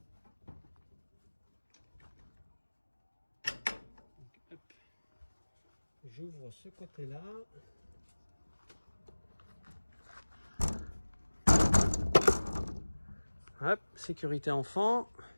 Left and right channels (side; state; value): both; inverted; correlation -1.00